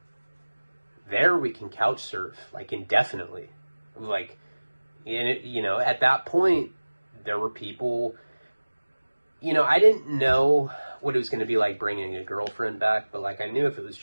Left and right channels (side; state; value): both; inverted; correlation -1.00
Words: there we can couch surf like indefinitely. Like, and it, you know, at that point, there were people, you know, I didn't know what it was going to be like bringing a girlfriend back, but like, I knew if it was